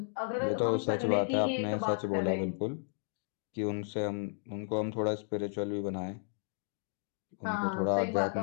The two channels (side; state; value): right; silent; 55 dB below the other